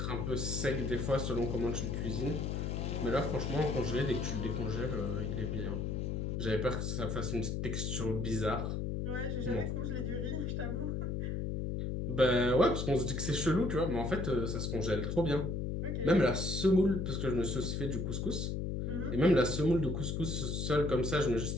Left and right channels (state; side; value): noise; left; hum, 1 dB below the sound